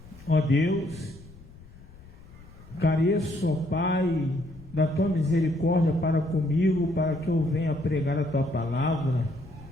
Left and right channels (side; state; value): left; noise; rumble, 20 dB below the sound